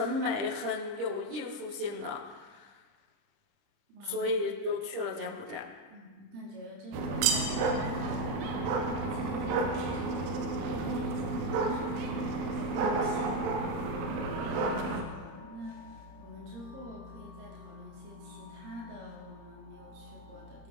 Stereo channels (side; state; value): left; late; 31 ms